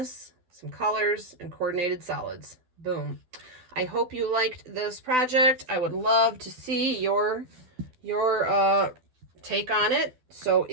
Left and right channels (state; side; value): late; left; 12 ms